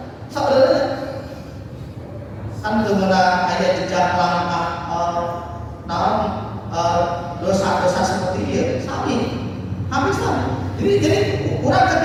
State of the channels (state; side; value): identical; both; correlation 1.00